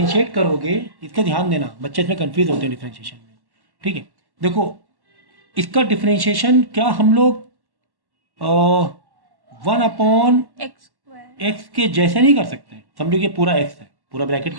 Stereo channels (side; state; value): left; late; 1.1 ms